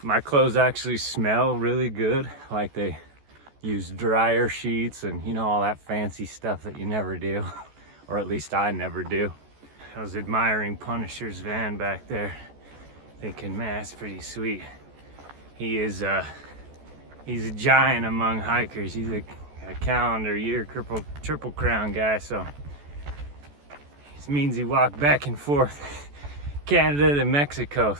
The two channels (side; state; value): left; late; 14 ms